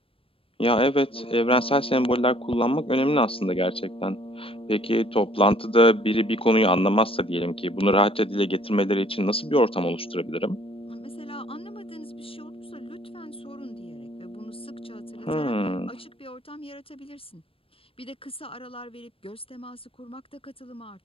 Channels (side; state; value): right; late; 0.27 ms